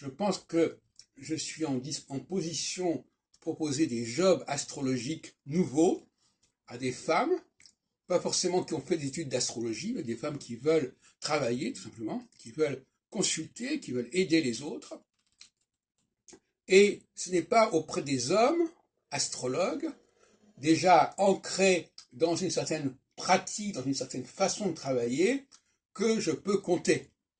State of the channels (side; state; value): both; identical; correlation 1.00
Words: pense que je suis en position de proposer des jobs astrologiques nouveaux à des femmes, pas forcément qui ont fait des études d'astrologie, mais des femmes qui veulent travailler, tout simplement, qui veulent consulter, qui veulent aider les autres. Et ce n'est pas auprès des hommes, astrologues, déjà ancrés dans une certaine pratique, dans une certaine façon de travailler, que je peux compter.